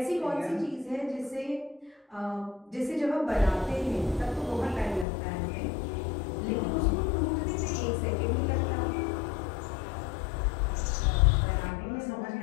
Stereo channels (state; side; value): drops out; right; at 5.1 s